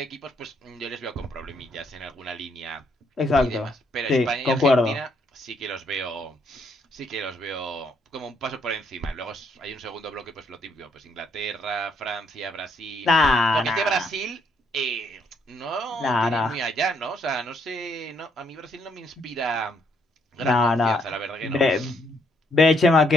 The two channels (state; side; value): normal; both; correlation 0.72